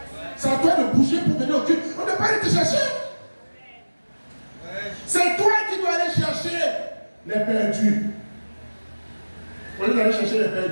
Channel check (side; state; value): both; inverted; correlation -1.00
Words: C'est à toi de bouger pour venir au culte. On ne peut pas aller te chercher. C'est toi qui dois aller chercher les perdus. Au lieu d'aller chercher les